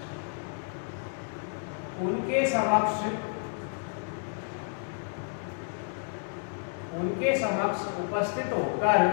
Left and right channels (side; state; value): right; silent; 56 dB below the other